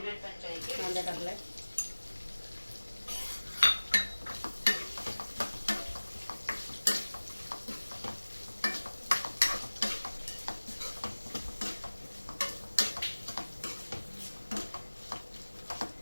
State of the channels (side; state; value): both; inverted; correlation -1.00